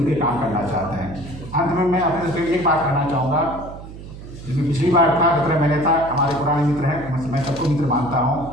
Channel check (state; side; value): noise; right; hum, 14 dB below the sound